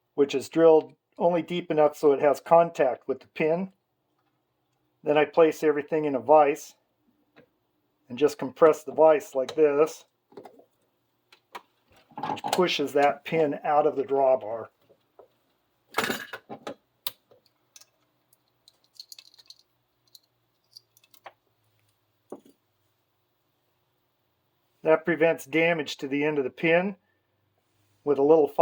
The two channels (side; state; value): both; identical; correlation 1.00